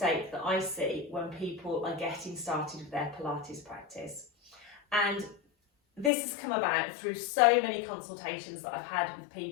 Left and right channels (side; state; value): right; drops out; at 6.1 s